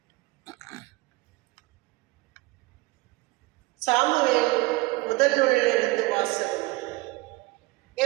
சாமுவேல் முதல் நூலிலிருந்து வாசகம்.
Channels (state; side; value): quieter; left; 22.0 dB